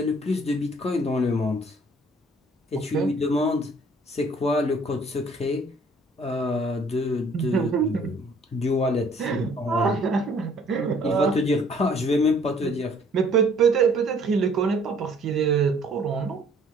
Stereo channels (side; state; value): both; normal; correlation 0.58